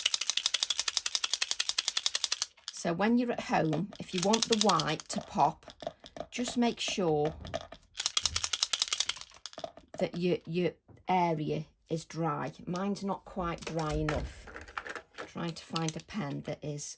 So when you're at home, if you want the white to pop, just make sure that your area is dry. Mine's not quite dry enough. I'm trying to find a pen that is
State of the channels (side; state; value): both; identical; correlation 1.00